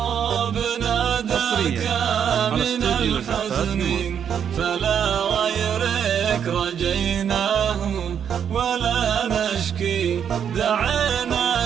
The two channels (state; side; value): quieter; left; 8.2 dB